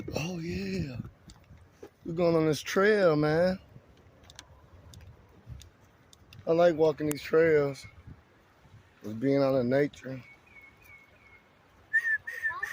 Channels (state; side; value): identical; both; correlation 1.00